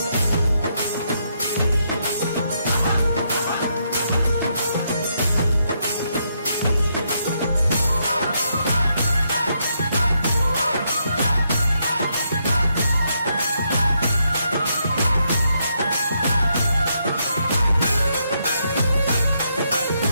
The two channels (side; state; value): both; inverted; correlation -0.78